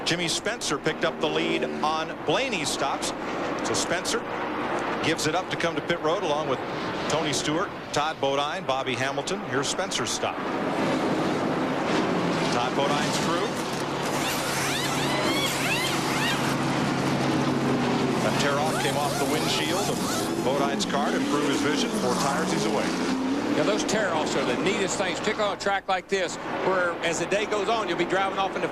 Jimmy Spencer picked up the lead on Blaney's stops. So Spencer gives it up to come to pit road along with Tony Stewart, Todd Bodine, Bobby Hamilton. Here's Spencer's stop. Todd Bodine's crew. That tear-off came off the windshield of Bodine's car to improve his vision. 4 tires, he's away. Now, those tear-offs are the neatest things, particularly on a track like this, where as the day goes on, you'll be driving off in the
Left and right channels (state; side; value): identical; both; correlation 1.00